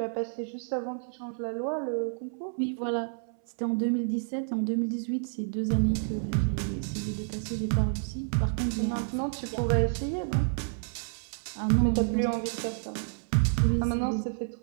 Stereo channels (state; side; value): silent; left; 58 dB below the other